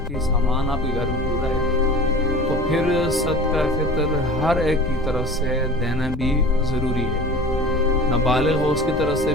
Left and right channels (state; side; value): noise; left; rumble, 10 dB below the sound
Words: سامان آپ کے گھر میں پورا ہے، تو پھر صدقہ فطر ہر ایک کی طرف سے دینا بھی ضروری ہے۔ نہ بالغ ہو اس کی طرف سے